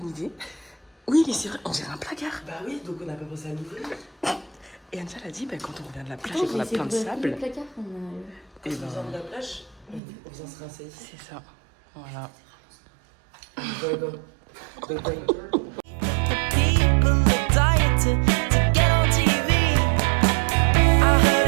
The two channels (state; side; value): drops out; left; at 10.0 s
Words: idée. Oui, mais c'est vrai, on dirait un placard. Bah oui, donc on a pas pensé à l'ouvrir. Et Ancha a dit, bah, quand on revient de la plage et qu'on a plein de sable. Et ben... de la plage, on vient se rincer ici. C'est ça. Voilà.